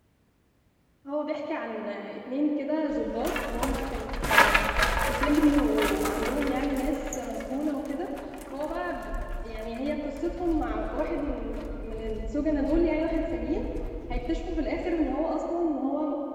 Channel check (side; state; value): both; identical; correlation 1.00